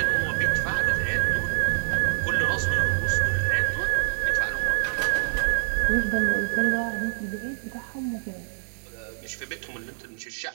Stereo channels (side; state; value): left; silent; digital silence